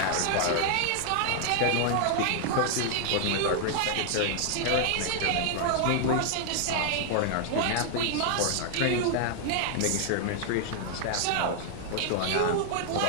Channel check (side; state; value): both; different; correlation 0.00